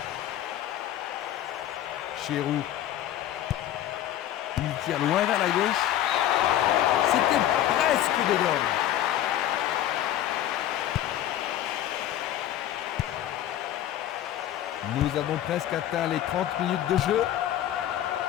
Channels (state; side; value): quieter; right; 12.1 dB